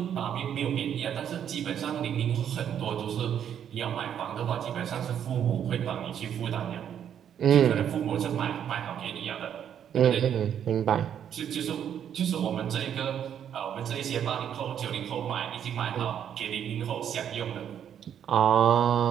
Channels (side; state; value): left; quieter; 9.2 dB